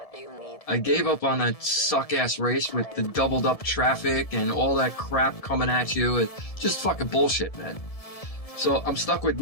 I gave up on that suck-ass race with the doubled-up traffic and all that crap coming at you. It's just fucking bullshit, man. So I'm stuck with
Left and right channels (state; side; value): late; right; 1.7 ms